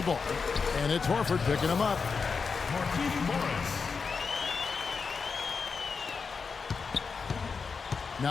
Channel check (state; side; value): quieter; right; 5.2 dB